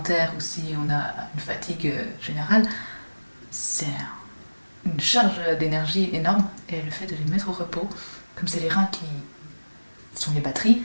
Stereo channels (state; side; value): inverted; both; correlation -1.00